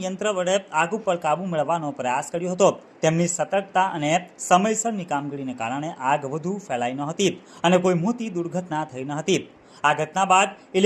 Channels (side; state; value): both; identical; correlation 1.00